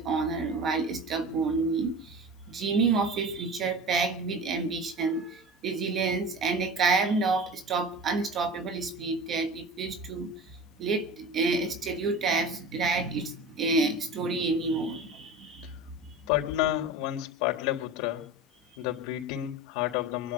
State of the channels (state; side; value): normal; both; correlation 0.34